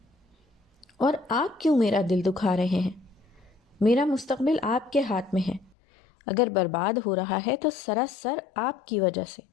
اور آپ کیوں میرا دل دکھا رہے ہیں؟ میرا مستقبل آپ کے ہاتھ میں ہے، اگر برباد ہو رہا ہے تو سراسر آپ کی وجہ سے۔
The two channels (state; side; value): drops out; right; at 5.7 s